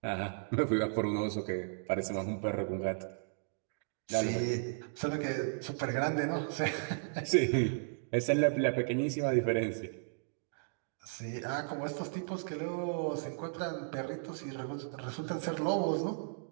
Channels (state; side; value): silent; left; digital silence